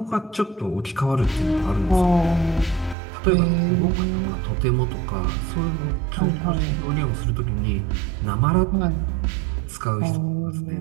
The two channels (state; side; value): drops out; left; at 3.0 s